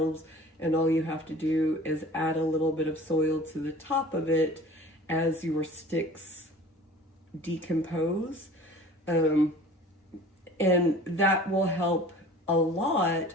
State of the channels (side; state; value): both; normal; correlation 0.44